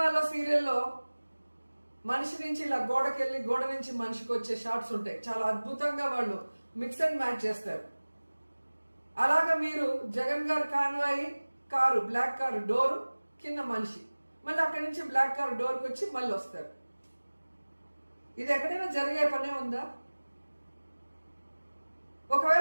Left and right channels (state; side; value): inverted; both; correlation -1.00